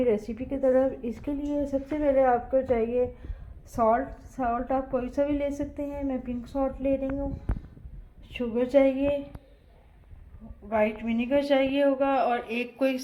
रेसिपी की तरफ। इसके लिए सबसे पहले आपको चाहिए सॉल्ट आप कोई सा भी ले सकते हैं, मैं पिंक सॉल्ट ले रही हूँ। शुगर चाहिए, वाइट विनेगर चाहिए होगा, और एक कोई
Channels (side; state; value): both; identical; correlation 1.00